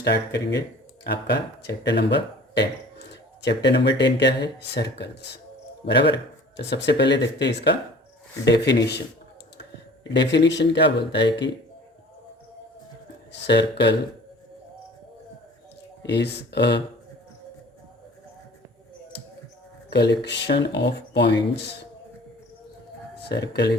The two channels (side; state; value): both; normal; correlation 0.46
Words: करेंगे आपका चैप्टर नंबर 10। चैप्टर नंबर 10 क्या है? सर्कल्स। बराबर। तो सबसे पहले देखते हैं इसका डेफिनेशन। डेफिनेशन क्या बोलता है कि circle is a collection of points. Circle